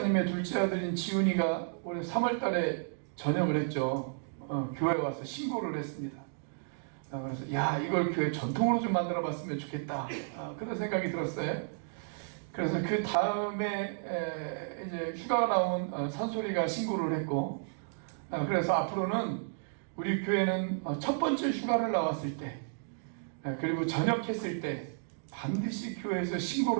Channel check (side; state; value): left; silent; digital silence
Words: 둘째 아들인 지훈이가 올해 3월 달에 전역을 했죠. 교회에 와서 신고를 했습니다. 그래서 야, 이걸 교회 전통으로 좀 만들어 봤으면 좋겠다. 그런 생각이 들었어요. 그래서 그 다음에 이제 휴가가 나온 산소리가 신고를 했고, 그래서 앞으로는 우리 교회는 첫 번째 휴가를 나왔을 때, 그리고 전역했을 때 반드시 교회에서